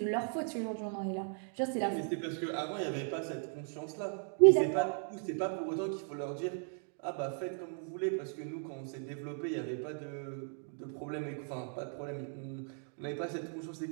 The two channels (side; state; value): left; silent; 53 dB below the other